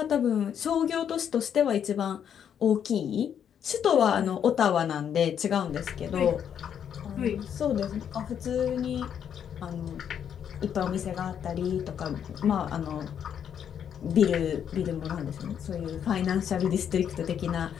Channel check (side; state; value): right; quieter; 8.6 dB